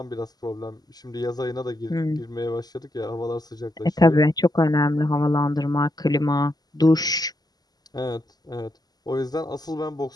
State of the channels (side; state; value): right; late; 0.19 ms